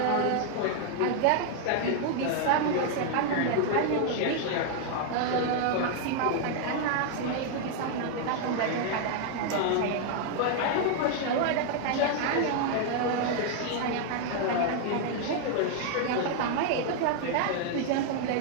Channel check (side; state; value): both; different; correlation 0.00